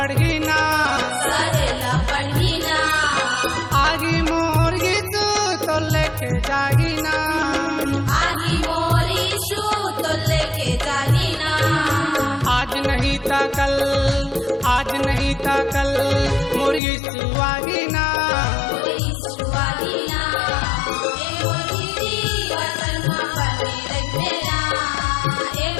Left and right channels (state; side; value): drops out; right; at 16.8 s